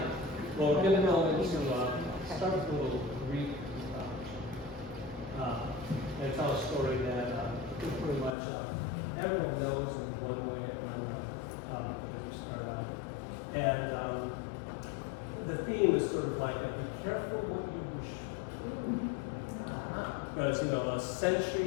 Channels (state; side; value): drops out; right; at 8.3 s